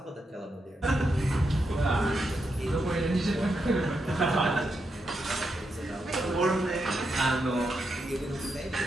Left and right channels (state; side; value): normal; both; correlation 0.84